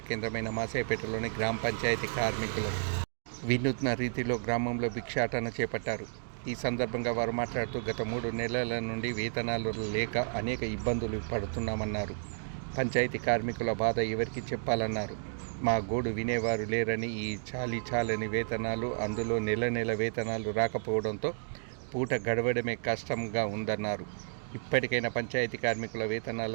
కేంద్రమైన మాసాయిపేటలోని గ్రామ పంచాయతీ కార్మికులు వినూత్న రీతిలో గ్రామంలో భిక్షాటన చేపట్టారు. ఈ సందర్భంగా వారు మాట్లాడుతూ గత 3 నెలల నుండి వేతనాలు లేక అనేక ఇబ్బందులు పడుతున్నామన్నారు. పంచాయతీ కార్మికుల బాధ ఎవరికి చెప్పాలన్నారు. మా గోడు వినేవారు లేరని, ఈ చాలని వేతనాలు, అందులో నెల వేతనాలు రాకపోవడంతో పూట గడవడమే కష్టంగా ఉందన్నారు. ఇప్పటికైనా పంచాయతీ కార్మికుల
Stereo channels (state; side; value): silent; left; digital silence